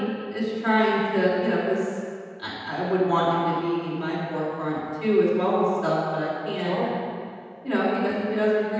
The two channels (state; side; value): identical; both; correlation 1.00